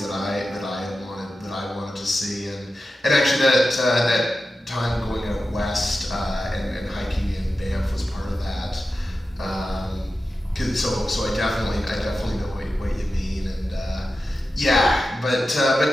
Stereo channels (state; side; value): normal; both; correlation 0.92